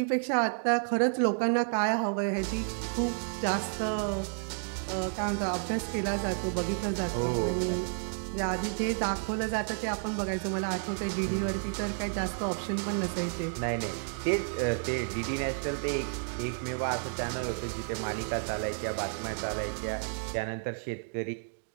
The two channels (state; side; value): silent; left; 57 dB below the other